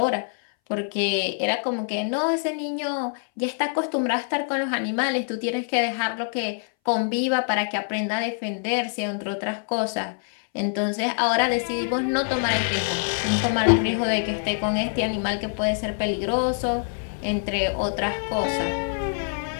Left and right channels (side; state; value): right; silent; 60 dB below the other